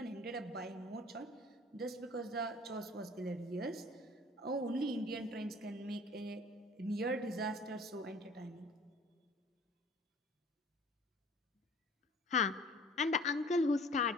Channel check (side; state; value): both; normal; correlation 0.49